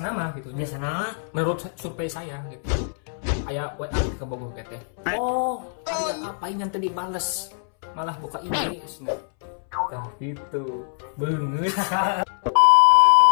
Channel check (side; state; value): right; silent; 62 dB below the other